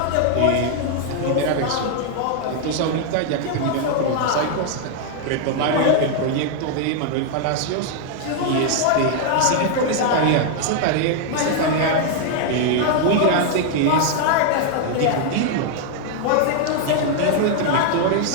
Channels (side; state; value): both; different; correlation 0.00